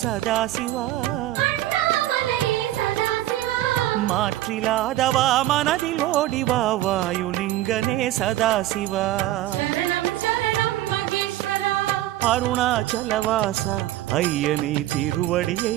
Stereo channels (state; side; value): quieter; left; 14.8 dB